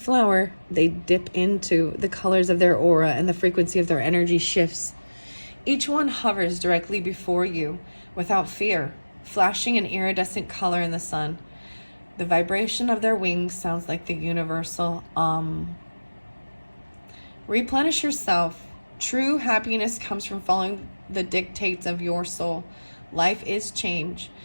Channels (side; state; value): both; inverted; correlation -1.00